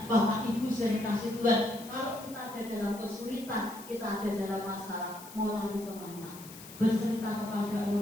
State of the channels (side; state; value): left; noise; hiss, 16 dB below the sound